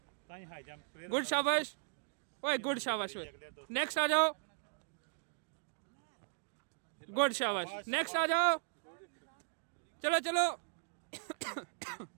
गुड शाबाश। ओए गुड, शाबाश। ओए नेक्स्ट आ जाओ, गुड शाबाश। नेक्स्ट आ जाओ, चलो चलो।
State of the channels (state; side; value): silent; left; digital silence